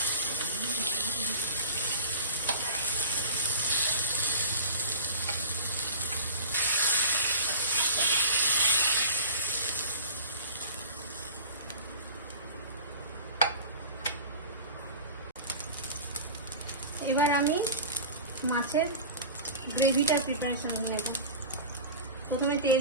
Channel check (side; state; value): both; inverted; correlation -0.35